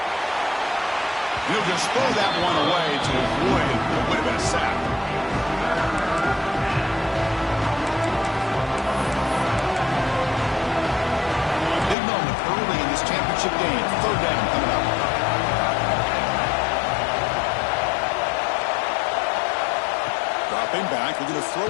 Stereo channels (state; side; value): drops out; right; at 12.0 s